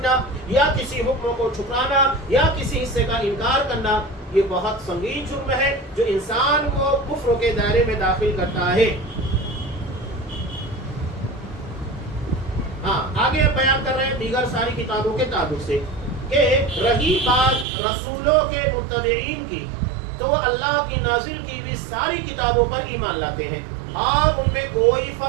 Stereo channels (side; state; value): left; drops out; at 17.7 s